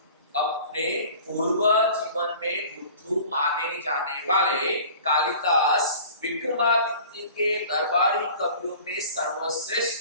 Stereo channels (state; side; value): inverted; both; correlation -0.44